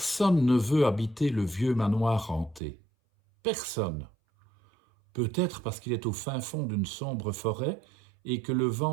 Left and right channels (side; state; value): left; drops out; at 2.6 s